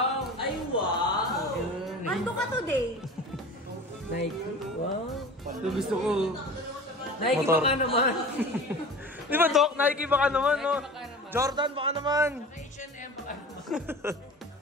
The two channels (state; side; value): normal; both; correlation 0.37